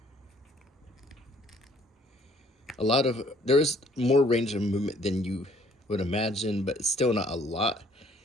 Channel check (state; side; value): normal; both; correlation 0.60